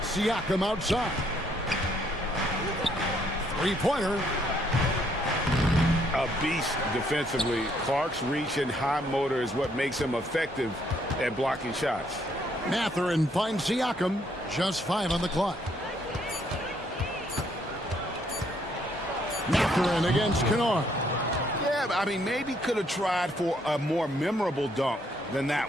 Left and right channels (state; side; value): normal; both; correlation 0.69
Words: Siakam outside. 3-pointer. A beast defensively. Clark's reach and high motor is what makes him effective at blocking shots. Mathurin finds Siakam. Just 5 on the clock. Mathurin against Kennard. Yeah, I mean, maybe could have tried for a more memorable dunk than